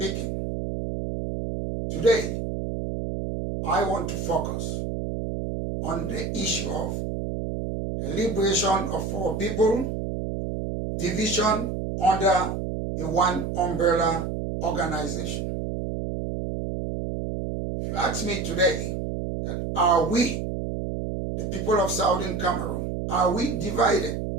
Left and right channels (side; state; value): right; noise; hum, 3 dB below the sound